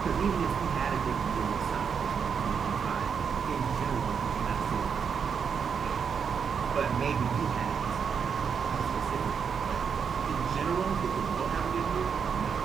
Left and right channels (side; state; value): left; quieter; 6.6 dB